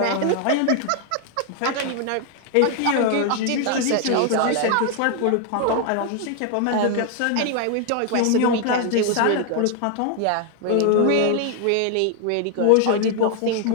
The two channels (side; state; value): both; different; correlation 0.00